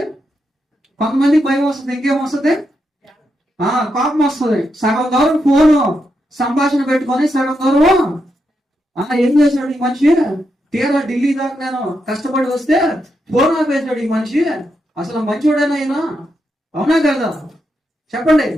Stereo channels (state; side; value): normal; both; correlation 0.84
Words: కొంతమందికి భయం వస్తుంది. ఇంకేమొస్తుంది? కోపం వస్తుంది. సగం దూరం ఫోను సంభాషణ పెట్టుకొని సగం దూరం ఏం చేశాడు ఈ మనిషి? తీరా ఢిల్లీ దాకా నేను కష్టపడి వస్తే ఫోన్ ఆపేశాడు ఈ మనిషి. అసలు మంచోడేనా అయినా? అవునా కదా? చెప్పండి.